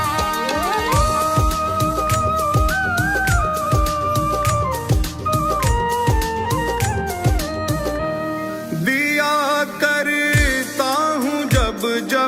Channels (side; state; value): both; identical; correlation 1.00